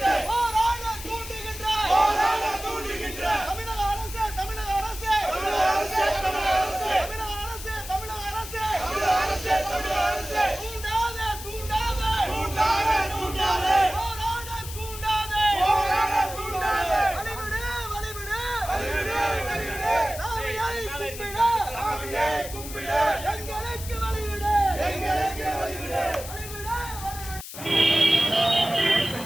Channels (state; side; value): noise; left; hiss, 11 dB below the sound